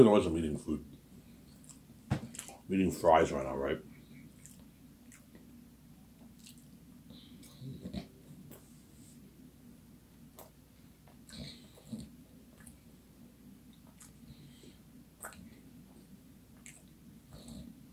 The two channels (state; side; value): identical; both; correlation 1.00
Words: noise I'm eating food. I'm eating fries right now, right?